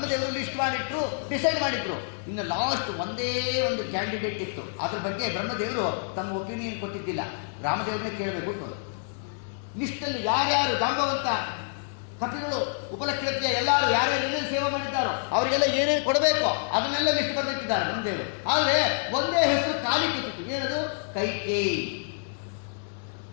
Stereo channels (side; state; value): right; silent; digital silence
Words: ಲಿಸ್ಟ್ ಮಾಡಿಟ್ರು, ಡಿಸೈಡ್ ಮಾಡಿದ್ರು. ಇನ್ನು ಲಾಸ್ಟ್ ಒಂದೇ ಒಂದು ಕ್ಯಾಂಡಿಡೇಟ್ ಇತ್ತು. ಅದ್ರ ಬಗ್ಗೆ ಬ್ರಹ್ಮದೇವರು ತಮ್ಮ ಒಪಿನಿಯನ್ ಕೊಟ್ಟಿದ್ದಿಲ್ಲ, ರಾಮದೇವ್ರನ್ನೇ ಕೇಳಬೇಕು. ಲಿಸ್ಟಲ್ಲಿ ಯಾರ್ಯಾರು ಜಾಂಬವಂತ ಕಪಿಗಳು ಉಪಲಕ್ಷಣಕ್ಕೆ ಎಲ್ಲರೂ ಯಾರ್ಯಾರು ಏನೇನು ಸೇವೆ ಮಾಡಿದ್ದಾರೋ ಅವರಿಗೆಲ್ಲ ಏನೇನು ಕೊಡಬೇಕು ಅದನ್ನೆಲ್ಲ ಲಿಸ್ಟ್ ಬರೆದಿಟ್ಟಿದ್ದಾರೆ ಬ್ರಹ್ಮದೇವರು. ಆದರೆ ಒಂದೇ ಹೆಸರು ಖಾಲಿ ಕೂತಿತ್ತು. ಏನದು? ಕೈಕೇಯಿ.